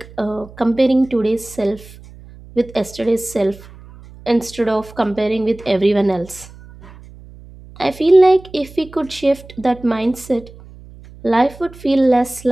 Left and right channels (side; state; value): right; noise; hum, 20 dB below the sound